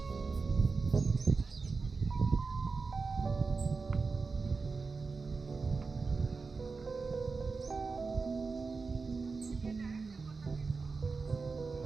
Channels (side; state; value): left; quieter; 4.4 dB